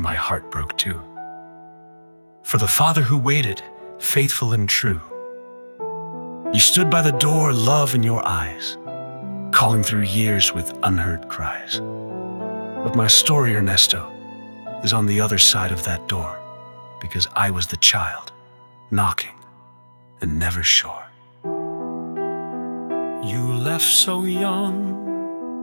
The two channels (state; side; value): inverted; both; correlation -1.00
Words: heart broke too. For the father who waited, faithful and true. You stood by the door, love in your eyes, calling through years with unheard cries. But my story, Ernesto, is on the other side of that door, because I was the child, knocking and never sure. You left so young,